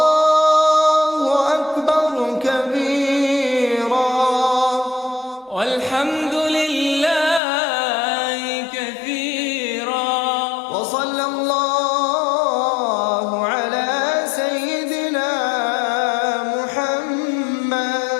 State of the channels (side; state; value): right; drops out; at 7.4 s